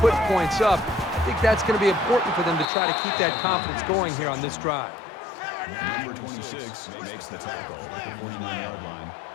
put points up. I think that's going to be important for them to try to keep that confidence going here on this drive. Number 26 makes the tackle at the 49-yard line.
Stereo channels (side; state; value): right; drops out; at 2.7 s